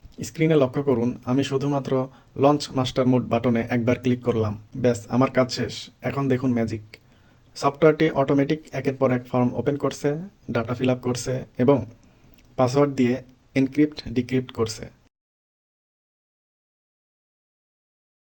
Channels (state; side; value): identical; both; correlation 1.00